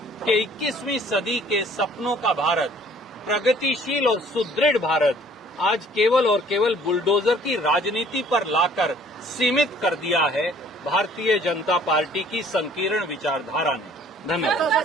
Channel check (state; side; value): normal; both; correlation 0.56